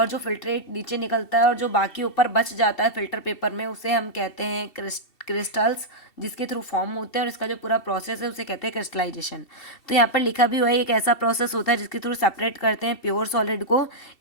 जो फिल्ट्रेट नीचे निकलता है और जो बाकी ऊपर बच जाता है फिल्टर पेपर में, उसे हम कहते हैं क्रिस्टल्स, जिसके थ्रू फॉर्म होते हैं, और इसका जो पूरा प्रोसेस है उसे कहते हैं क्रिस्टलाइजेशन। तो यहाँ पर लिखा भी हुआ है, एक ऐसा प्रोसेस होता है जिसके थ्रू सेपरेट करते हैं प्योर सॉलिड को,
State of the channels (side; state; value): right; late; 2.7 ms